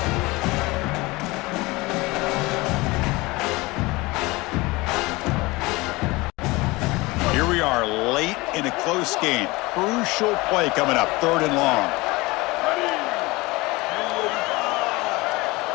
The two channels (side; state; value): right; quieter; 22.5 dB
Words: Close game. Crucial play coming up. 3rd and long.